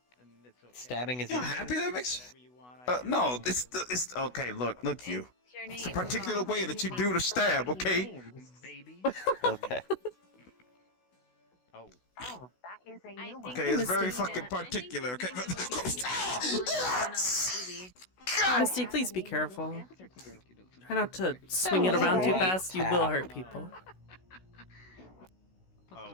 Stabbing is. You happy that makes? No, it's okay. Look you. It's a particular way that you do the stab, okay? Okay. Oh, that is a new one. Okay, it's very fucking particular. Okay. Misty, please be careful. Try not to swing it around too fast. You will hurt people. Oh.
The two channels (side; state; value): right; late; 16 ms